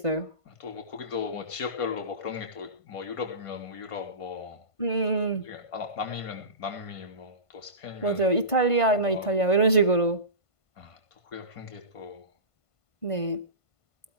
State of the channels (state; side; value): late; right; 1.5 ms